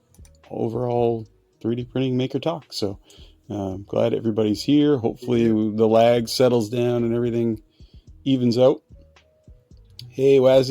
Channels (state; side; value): identical; both; correlation 1.00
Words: overall 3D printing maker talk. So glad everybody's here. Hopefully the lag settles down and everything evens out. Hey